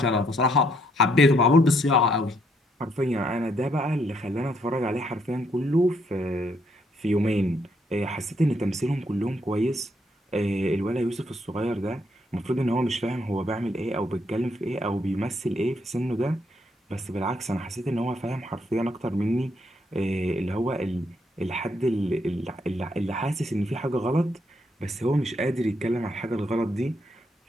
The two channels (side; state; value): both; normal; correlation 0.73